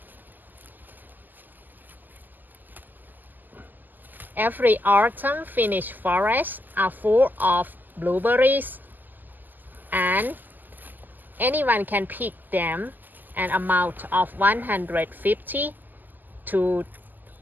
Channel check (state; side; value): late; left; 0.086 ms